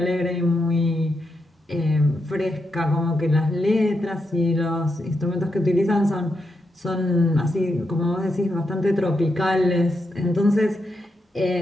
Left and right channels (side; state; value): both; normal; correlation 0.84